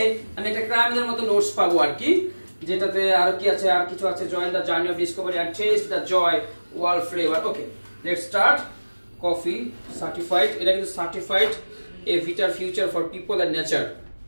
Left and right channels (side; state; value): both; inverted; correlation -1.00